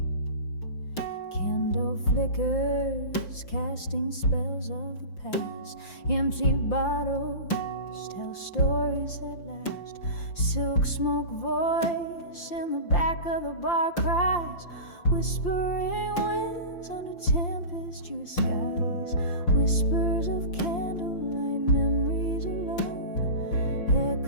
Candle flickers casting spells of the past. Empty bottles tell stories that last. Silk smoke voice in the back of the bar cries. Whispering winds under tempestuous skies. Whispers of candlelight, memories alone.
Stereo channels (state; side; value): late; right; 5.8 ms